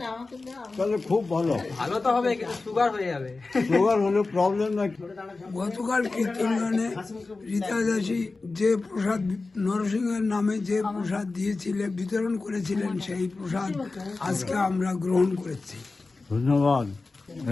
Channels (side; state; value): right; quieter; 3.7 dB